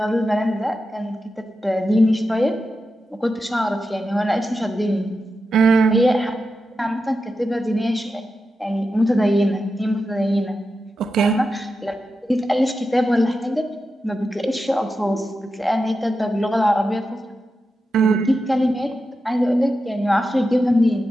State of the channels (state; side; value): normal; both; correlation 0.90